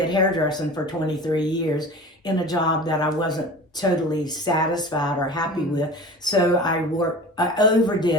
hairdressing for 23 years in a job that I wasn't totally satisfied or happy with. So I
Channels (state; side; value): normal; both; correlation 0.37